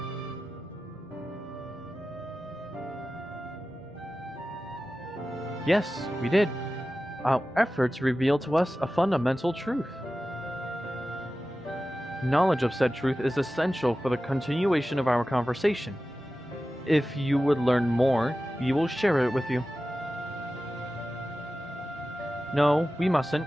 Yes, we did. Our efforts revealed to us a fundamental truth. Knowledge of said truth is essential for the continuation of our conversation. If you would learn more, we will share it with you. No, we mustn't.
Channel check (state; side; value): normal; both; correlation 0.94